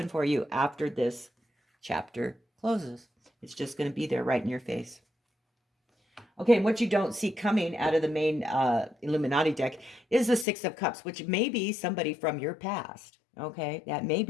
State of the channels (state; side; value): drops out; right; at 10.5 s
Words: for you after this chapter closes. It's just going to be there right in your face. Okay, and what you don't see coming out of the main Illuminati deck is the Six of Cups, which may be somebody from your past. Okay, that may